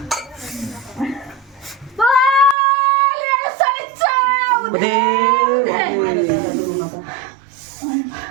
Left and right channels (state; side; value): drops out; left; at 2.6 s